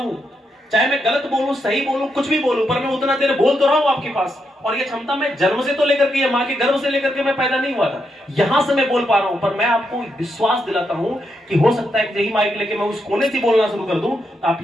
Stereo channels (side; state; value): both; normal; correlation 0.82